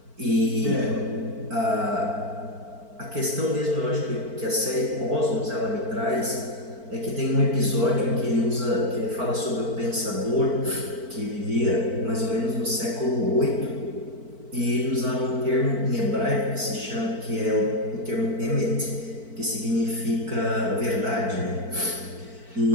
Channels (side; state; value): left; late; 4.5 ms